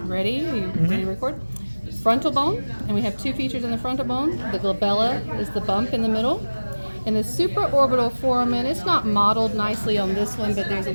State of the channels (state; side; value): inverted; both; correlation -1.00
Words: Ready? You ready to record? Frontal bone, and we have two features in the frontal bone. The glabella is the bump in the middle. And the supraorbital foramen, it's not modeled nicely on this one, but there's a